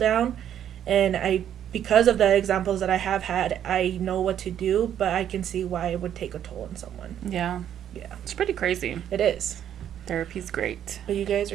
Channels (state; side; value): quieter; left; 10.1 dB